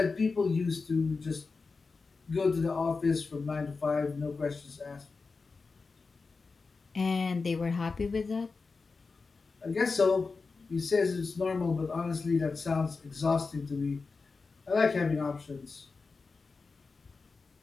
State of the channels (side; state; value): right; quieter; 4.3 dB